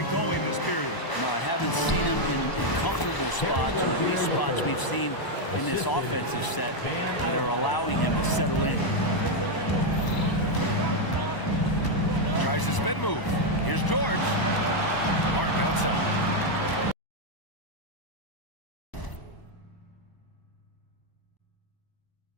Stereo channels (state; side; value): late; right; 1.0 ms